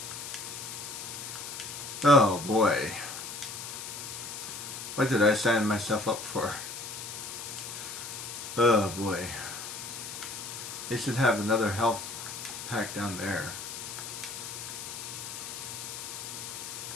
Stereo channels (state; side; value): noise; left; hiss, 8 dB below the sound